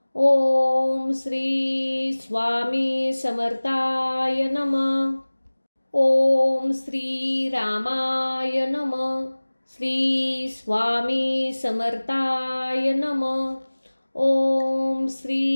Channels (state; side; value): inverted; both; correlation -1.00